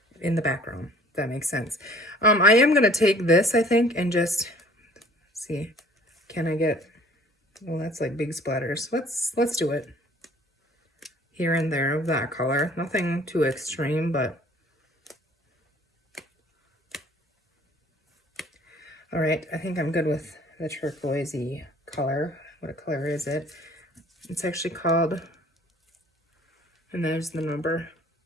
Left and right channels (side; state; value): both; normal; correlation 0.53